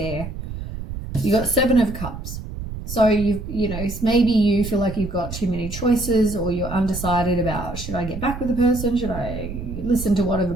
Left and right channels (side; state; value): right; noise; rumble, 8 dB below the sound